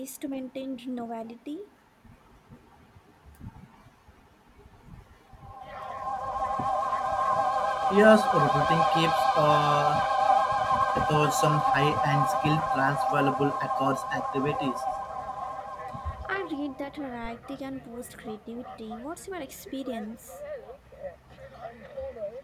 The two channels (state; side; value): identical; both; correlation 1.00